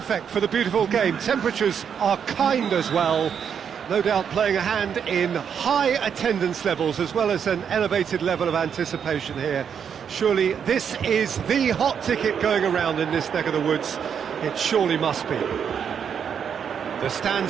for the beautiful game. Temperatures are kind as well, no doubt playing a hand in high attendance levels as well as an elevated level of anticipation here. Surely this is the hot ticket going around in this neck of the woods. It surely must be. The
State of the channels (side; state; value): left; quieter; 7.6 dB